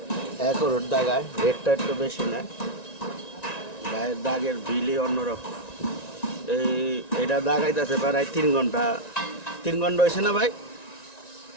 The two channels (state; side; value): late; right; 1.9 ms